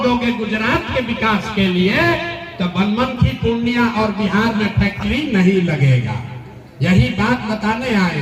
दोगे गुजरात के विकास के लिए तो बनमनखी, पूर्णिया और बिहार में फैक्ट्री नहीं लगेगा। यही बात बताने आए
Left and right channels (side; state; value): both; identical; correlation 1.00